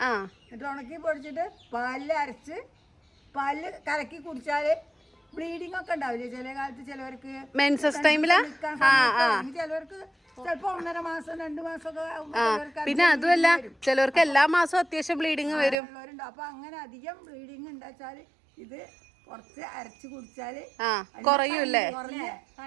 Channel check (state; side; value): drops out; left; at 15.8 s